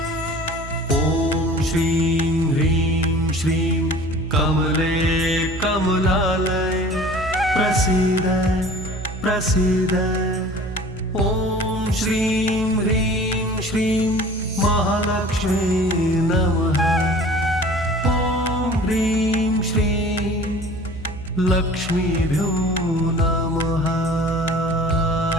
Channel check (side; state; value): right; noise; hum, 11 dB below the sound